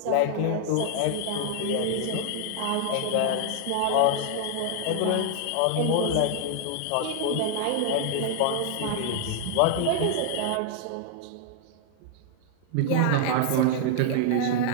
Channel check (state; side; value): different; both; correlation 0.00